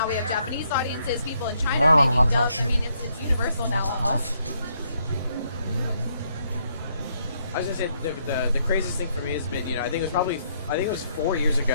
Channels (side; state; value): both; inverted; correlation -0.73